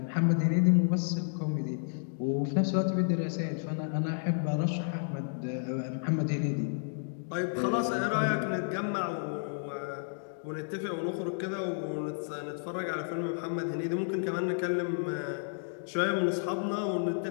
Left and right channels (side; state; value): right; silent; digital silence